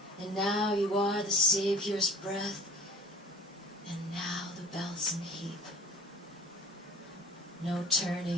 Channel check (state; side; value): normal; both; correlation 0.46